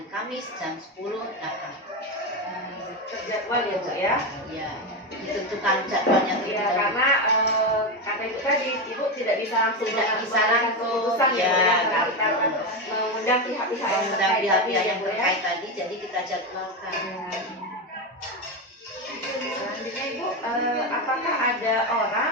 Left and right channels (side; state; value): both; normal; correlation 0.13